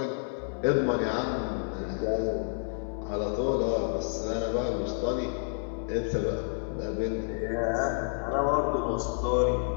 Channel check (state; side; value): silent; right; 58 dB below the other